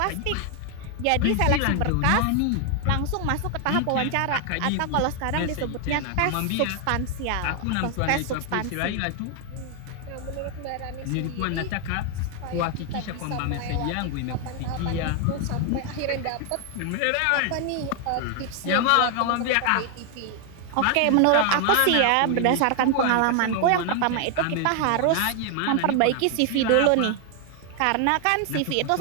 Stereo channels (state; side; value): different; both; correlation 0.00